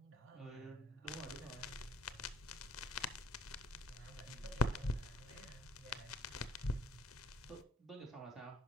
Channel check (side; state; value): both; normal; correlation 0.59